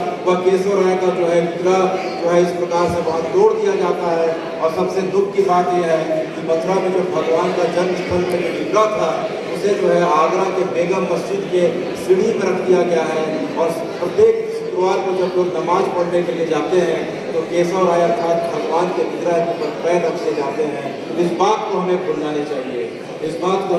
वह केशवराय का जो है विग्रह जो है इस प्रकार से वहाँ तोड़ दिया जाता है। और सबसे दुख की बात यह है कि मथुरा में जो भगवान का जन्म स्थल में जो विग्रह था उसे जो है आगरा के बेगम मस्जिद के सीढ़ी में रख दिया गया है और प्रत्येक शुक्रवार को जब लोग नमाज पढ़ने के लिए जाते हैं तो केशवराय अर्थात भगवान के विग्रह के ऊपर पैर रखते जाते हैं। इस बात को हमें भूलना नहीं चाहिए, इस बात को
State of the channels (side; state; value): both; identical; correlation 1.00